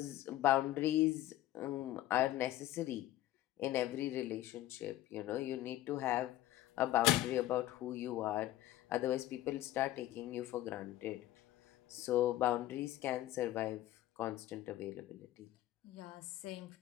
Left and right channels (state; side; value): quieter; right; 14.7 dB